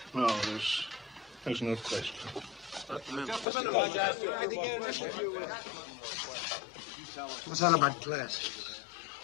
No, there's no question. What's that about glasses?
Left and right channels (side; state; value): right; drops out; at 3.5 s